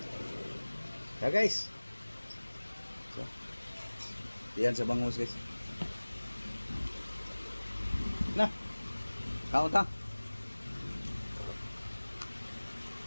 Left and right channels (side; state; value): both; inverted; correlation -1.00